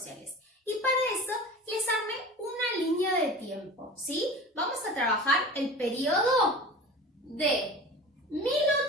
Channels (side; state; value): both; normal; correlation 0.36